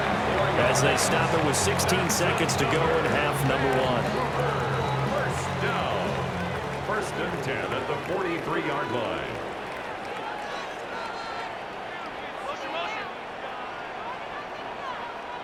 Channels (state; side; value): identical; both; correlation 1.00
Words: as they stop it with 16 seconds to go in half number 1. First down. 1st and 10 at the 43-yard line.